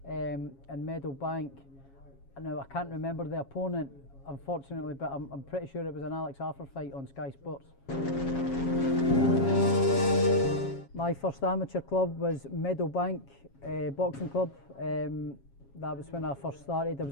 in Meadowbank. Now I can't remember the opponent unfortunately, but I'm pretty sure it was an Alex Arthur fight on Sky Sports. My first amateur club was Meadowbank Boxing Club. That was when I first started. I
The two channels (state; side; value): late; right; 7.3 ms